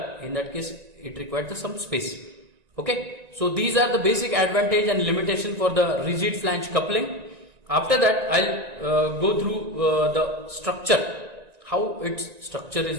In that case, it required some space. Okay, so these are the basic advantage and limitation for the rigid flange coupling. After that, I'll go through the structure, how its structure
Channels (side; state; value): left; late; 1.9 ms